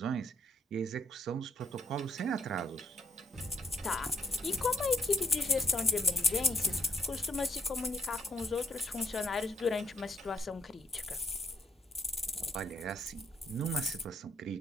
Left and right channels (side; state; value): both; normal; correlation 0.66